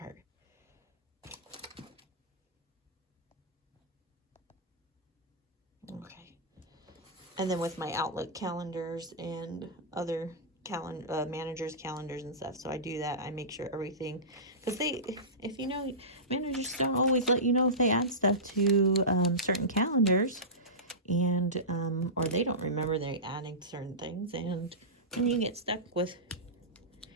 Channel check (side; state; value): both; normal; correlation -0.19